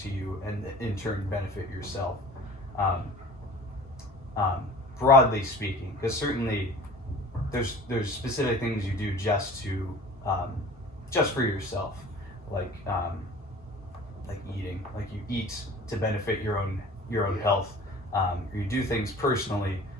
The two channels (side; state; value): both; normal; correlation 0.44